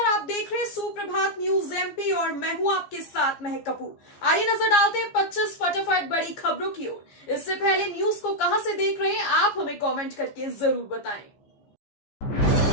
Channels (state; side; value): late; right; 15 ms